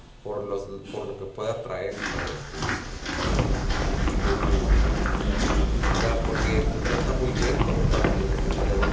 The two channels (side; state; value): both; identical; correlation 1.00